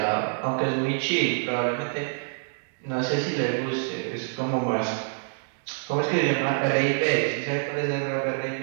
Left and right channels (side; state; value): left; silent; digital silence